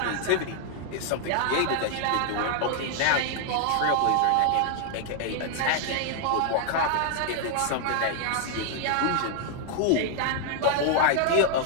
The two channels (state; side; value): different; both; correlation 0.00